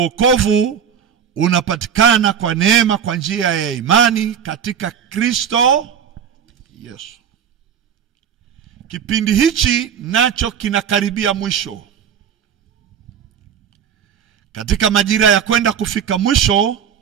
wokovu unapatikana kwa neema kwa njia ya imani katika Kristo Yesu. Kipindi hichi nacho kinakaribia mwisho. Katika majira ya kwenda kufika mwisho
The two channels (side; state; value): left; quieter; 8.2 dB